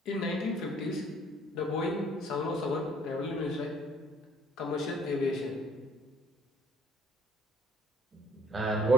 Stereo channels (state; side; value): normal; both; correlation 0.56